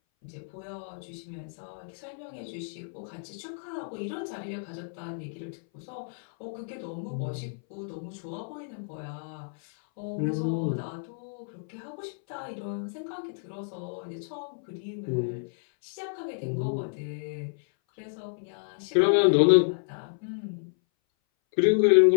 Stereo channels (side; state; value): right; silent; 58 dB below the other